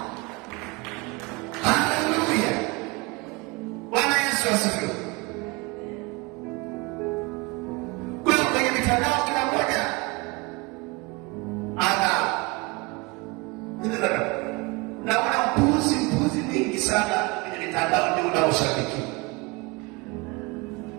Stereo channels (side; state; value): left; quieter; 26.0 dB